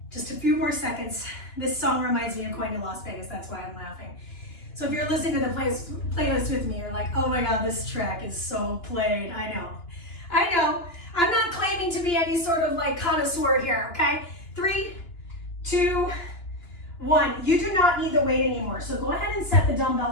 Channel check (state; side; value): late; right; 2.9 ms